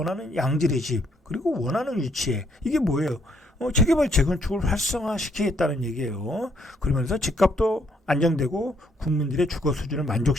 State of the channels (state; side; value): normal; both; correlation 0.69